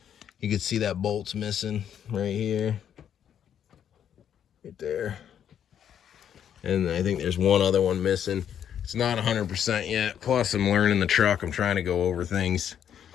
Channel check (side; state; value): right; quieter; 9.2 dB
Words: You can see that bolt's missing right here. Right there. And I think there's one other one missing. It's not 100% yet. Plus, I'm learning the truck. I'm trying to go over things,